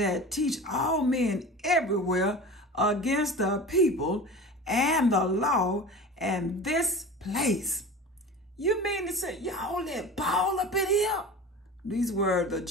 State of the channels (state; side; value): normal; both; correlation 0.35